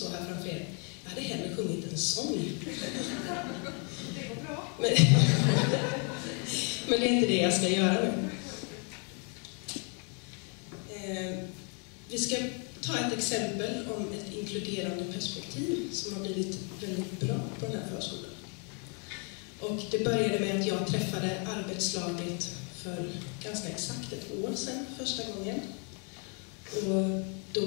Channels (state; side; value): quieter; right; 37.9 dB